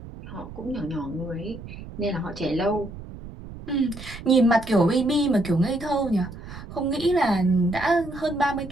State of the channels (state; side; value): noise; right; rumble, 13 dB below the sound